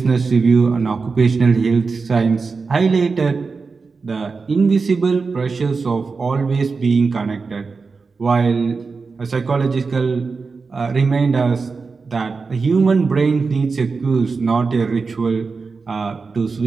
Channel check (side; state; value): left; quieter; 4.6 dB